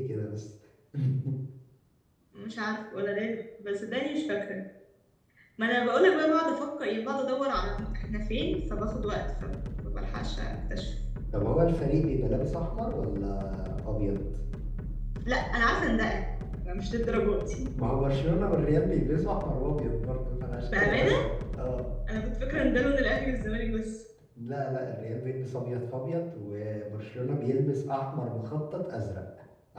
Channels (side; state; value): both; identical; correlation 1.00